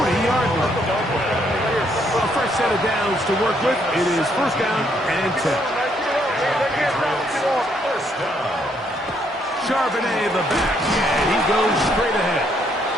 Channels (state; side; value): normal; both; correlation 0.71